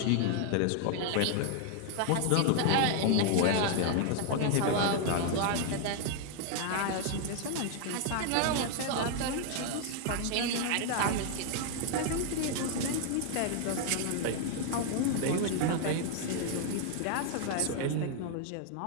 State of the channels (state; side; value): different; both; correlation 0.00